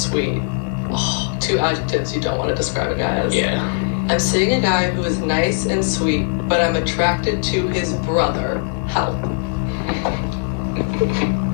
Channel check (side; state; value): right; silent; digital silence